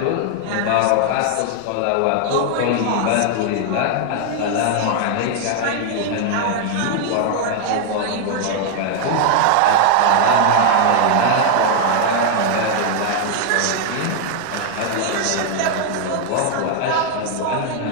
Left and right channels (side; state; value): both; different; correlation 0.00